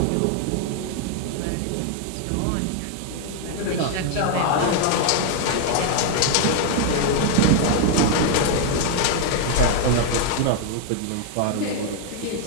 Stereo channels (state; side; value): different; both; correlation 0.00